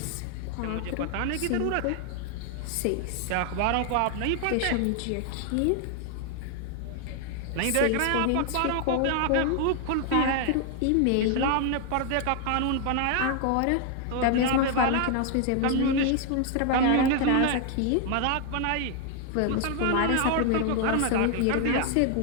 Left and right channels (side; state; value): both; different; correlation 0.00